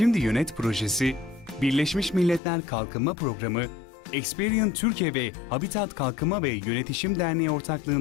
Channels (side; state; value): right; drops out; at 2.4 s